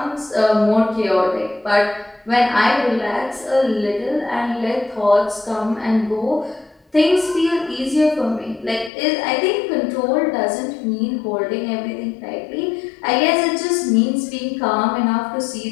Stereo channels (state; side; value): drops out; right; at 8.9 s